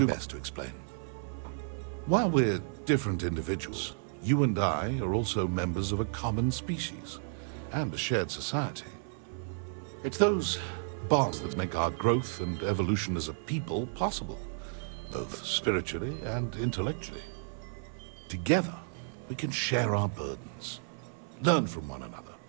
my best to explain. While we're different individuals, you and I are also members of a common species and a shared society. It's those bonds that make our growth and evolution as a people possible, both spiritually and intellectually. Together, we can share our burdens, learn from one another,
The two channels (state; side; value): silent; left; 56 dB below the other